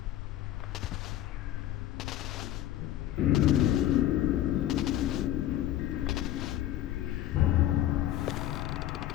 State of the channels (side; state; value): right; quieter; 13.1 dB